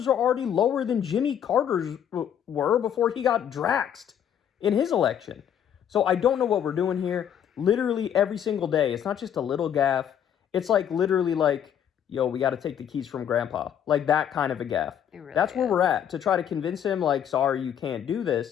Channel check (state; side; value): quieter; right; 9.2 dB